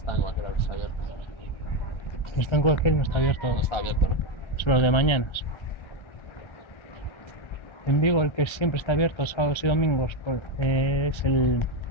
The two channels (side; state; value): right; late; 1.3 ms